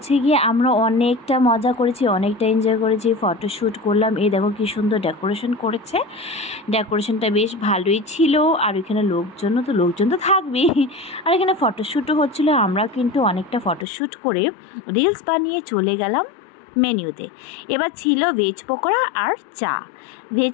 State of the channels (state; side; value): drops out; right; at 13.9 s